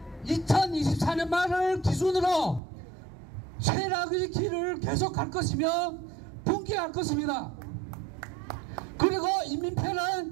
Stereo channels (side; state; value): left; drops out; at 2.6 s